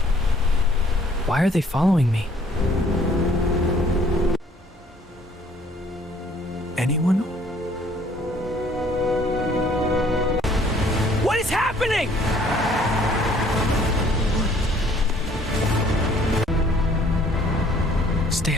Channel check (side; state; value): both; normal; correlation 0.59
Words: Why are they following me? Anyone? What is happening? Stay